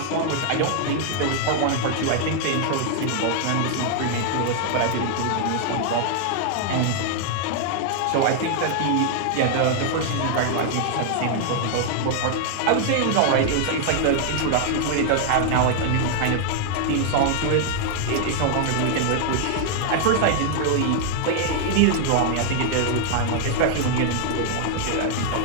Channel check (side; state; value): both; different; correlation 0.00